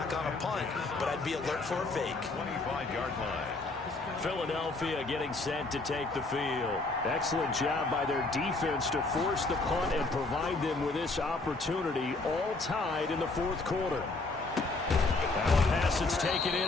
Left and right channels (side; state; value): right; quieter; 3.4 dB